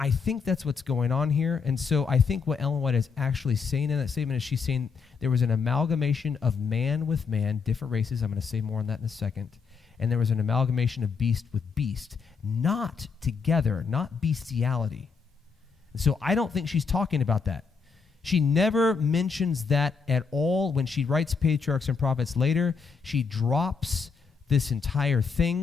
think that's what's going on here. And so I think what Ellen White is actually saying in that statement is she's saying there was an amalgamation of man with man, different races. I'm going to say more on that in a second. And there was an amalgamation of beast with beast, not together, not bestiality. And so I don't think she's talking about that. She never mentions that at all. When she writes Patriarchs and Prophets later, she drops this entire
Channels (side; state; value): right; quieter; 5.4 dB